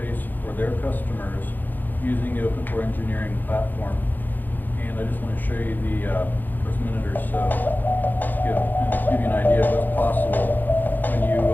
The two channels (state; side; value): late; right; 0.087 ms